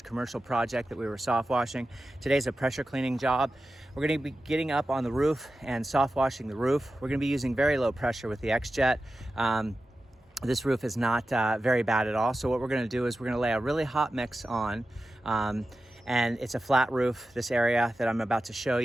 commercial project that we were soft washing. Today's a pressure cleaning job. We're going to be getting up on the roof and soft washing the roof. We're going to be using very low pressure with the X-Jet. This roof is not very bad at all. So what we're going to do is we're going to lay a really hot mix on. And it's a flat roof, this area that I'm about to show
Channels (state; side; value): normal; both; correlation 0.93